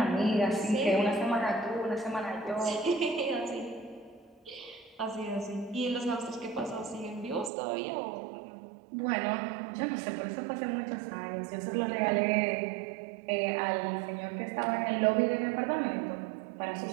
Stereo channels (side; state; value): left; drops out; at 7.5 s